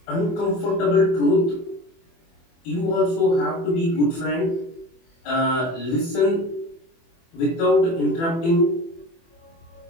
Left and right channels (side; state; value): right; late; 24 ms